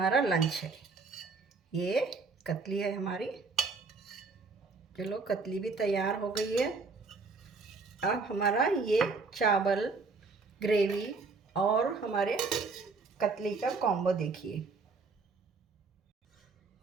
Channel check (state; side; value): quieter; left; 4.2 dB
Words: लंच है। ये कतली है हमारी। चलो कतली भी तैयार हो गई है। अब हमारा ये चावल, ग्रेवी और हमारे कतली का कॉम्बो देखिए।